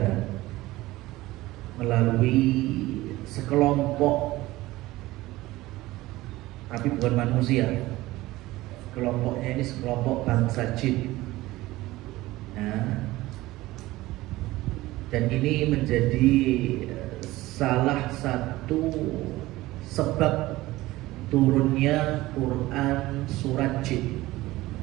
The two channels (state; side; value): quieter; left; 18.1 dB